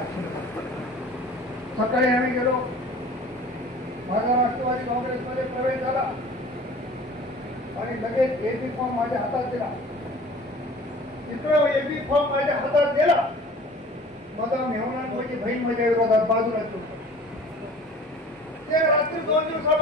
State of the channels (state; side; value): normal; both; correlation 0.45